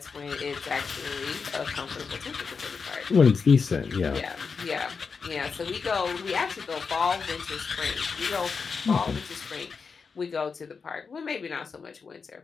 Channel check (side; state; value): right; quieter; 5.3 dB